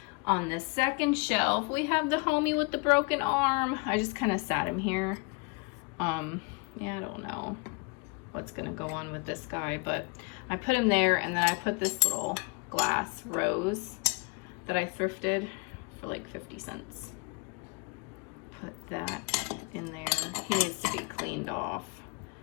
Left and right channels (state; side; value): quieter; right; 32.0 dB